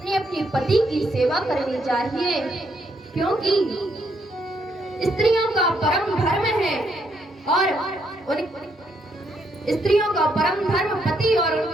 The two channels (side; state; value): both; normal; correlation 0.75